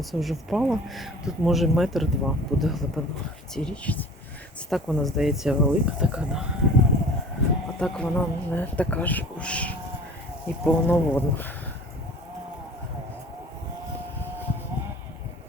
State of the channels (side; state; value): both; normal; correlation 0.45